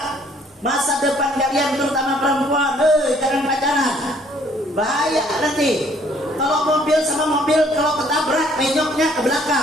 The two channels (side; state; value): both; normal; correlation 0.61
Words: masa depan kalian, terutama perempuan. Jangan pacaran, bahaya nanti. Kalau mobil sama mobil, kalau ketabrak penyoknya ke